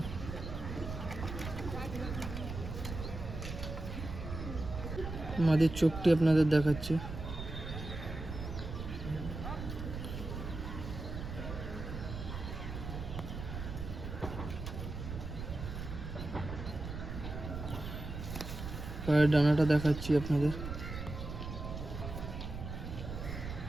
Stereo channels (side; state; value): right; noise; rumble, 7 dB below the sound